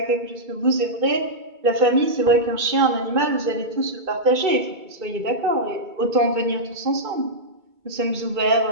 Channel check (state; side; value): late; left; 2.2 ms